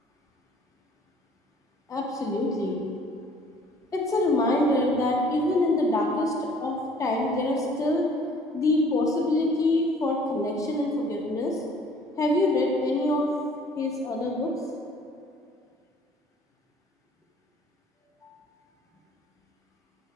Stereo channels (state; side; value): normal; both; correlation 0.55